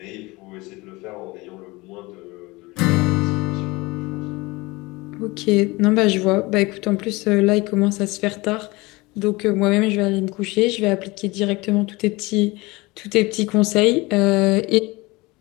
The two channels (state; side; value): quieter; right; 22.9 dB